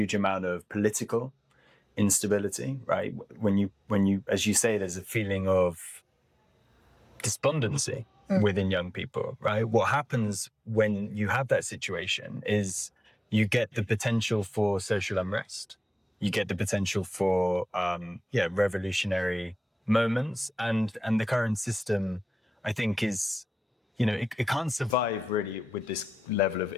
amount of political instability, right? When you, as you say, there's a feeling of despondency within young people, right? What happens when you have that situation is you get the potential for social unrest. You get the potential for, revolutionary moments. And the current system, I think, is, it can't survive really with this level of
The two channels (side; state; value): both; normal; correlation 0.95